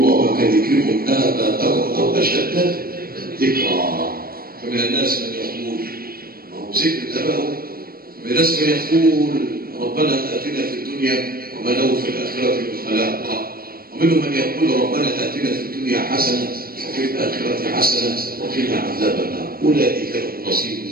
كذكركم آباءكم أو أشد ذكرا. فمن الناس من يقول ما هو ذكر آبائهم، ومن الناس من يقول ربنا آتنا في الدنيا وما له في الآخرة من خلاق، ومنهم من يقول ربنا آتنا في الدنيا حسنة وفي الآخرة حسنة وقنا عذاب النار. أولئك لهم نصيب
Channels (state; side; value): late; left; 0.43 ms